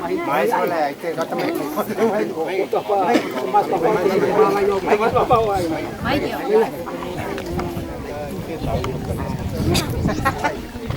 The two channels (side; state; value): both; identical; correlation 1.00